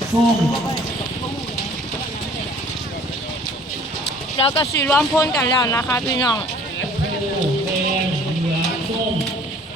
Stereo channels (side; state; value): both; normal; correlation 0.52